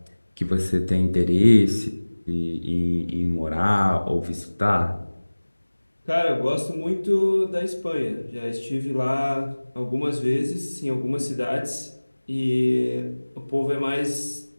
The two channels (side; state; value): both; inverted; correlation -1.00